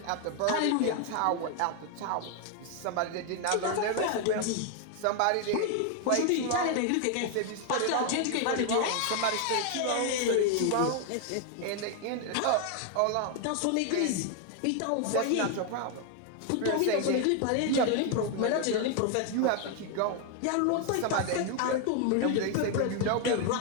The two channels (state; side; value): different; both; correlation 0.00